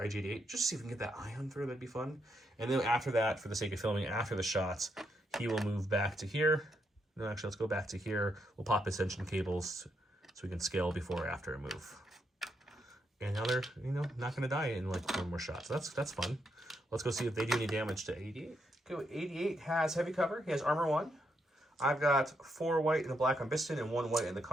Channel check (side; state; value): both; normal; correlation 0.79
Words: Just to see if we can get that ion through. That'd be fun. And then after that, for the sake of filming, after the shots, he will move back to here. No, actually, let's go back to here. We'll pop ascension cables so we can scale before or after a move. And now they're, not going to die in like 1 more shot. So that's fun. Let's go see if they do any damage to 88. Okay, 88 has heavy cover. He has armor 1. I've got 4 white and a black on Biston and 1 white in the